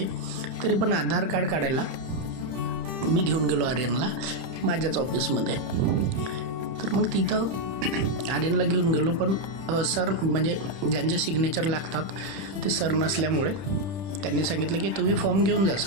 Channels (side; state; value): left; late; 30 ms